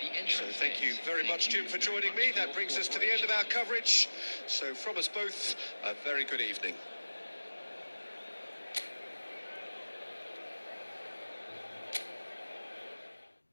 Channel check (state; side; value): inverted; both; correlation -1.00